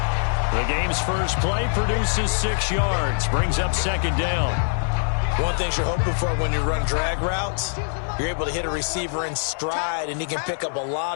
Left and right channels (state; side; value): silent; right; 63 dB below the other